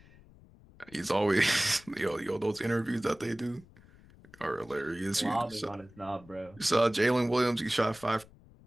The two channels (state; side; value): noise; left; rumble, 24 dB below the sound